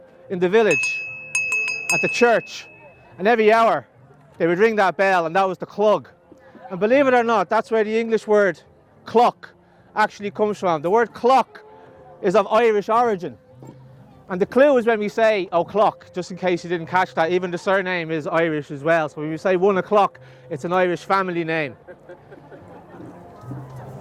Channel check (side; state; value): both; identical; correlation 1.00